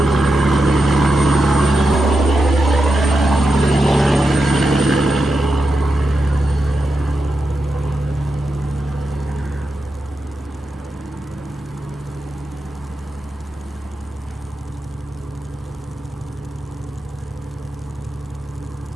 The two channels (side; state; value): both; normal; correlation 0.88